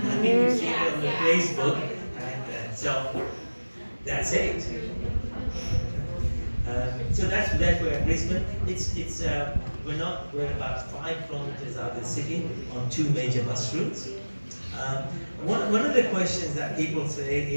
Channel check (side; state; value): both; inverted; correlation -1.00